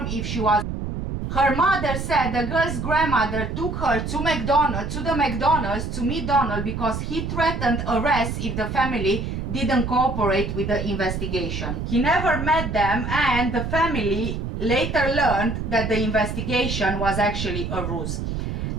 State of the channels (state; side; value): noise; right; rumble, 4 dB below the sound